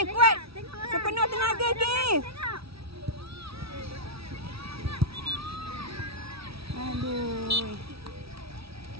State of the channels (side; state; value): left; late; 0.76 ms